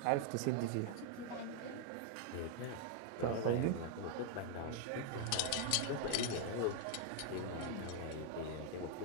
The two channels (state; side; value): different; both; correlation 0.00